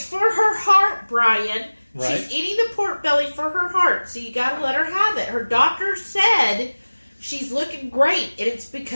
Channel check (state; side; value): inverted; both; correlation -1.00